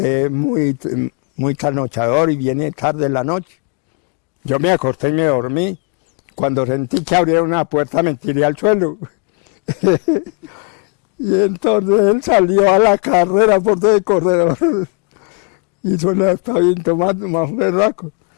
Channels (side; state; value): right; quieter; 36.4 dB